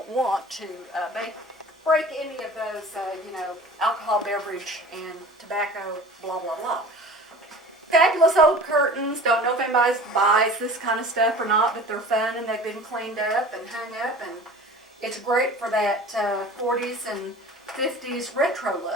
want to break any of those, alcohol beverage and tobacco, blah, blah, blah. Fabulous old curtains. Don't know if anybody buys this kind of stuff or not, but they're fun and they've been cleaned up and hung up, and it's great for that 40s and 50s retro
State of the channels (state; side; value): normal; both; correlation 0.40